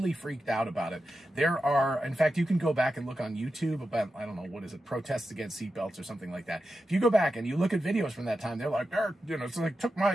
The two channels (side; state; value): both; normal; correlation 0.90